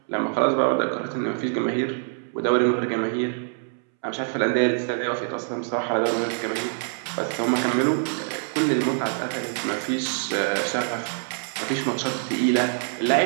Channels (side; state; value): left; silent; 62 dB below the other